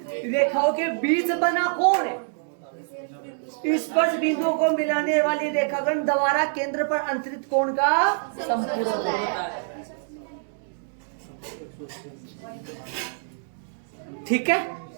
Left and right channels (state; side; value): silent; left; digital silence